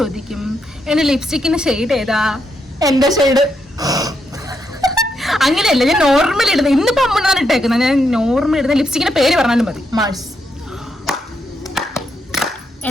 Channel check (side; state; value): both; normal; correlation 0.81